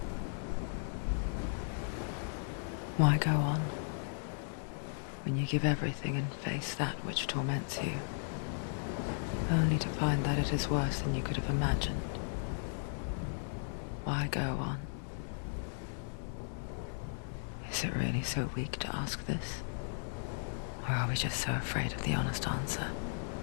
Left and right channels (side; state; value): right; silent; digital silence